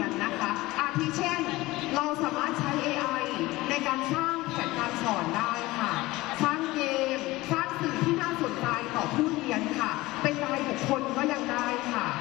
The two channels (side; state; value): right; quieter; 19.4 dB